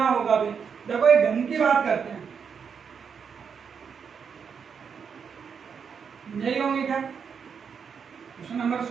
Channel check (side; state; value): left; quieter; 6.6 dB